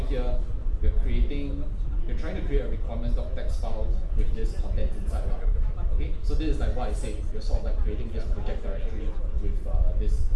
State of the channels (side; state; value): both; identical; correlation 1.00